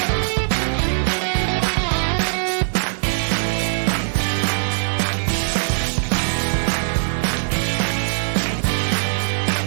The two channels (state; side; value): silent; left; digital silence